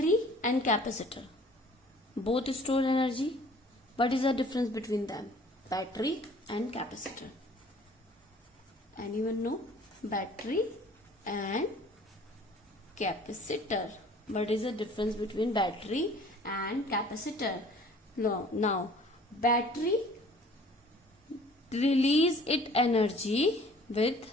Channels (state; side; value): normal; both; correlation 0.52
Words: and capacitor both store energy. What is the difference between them? Battery and capacitor. Anyone know? Battery and capacitor. What is the difference between battery and capacitor? Now battery release its energy with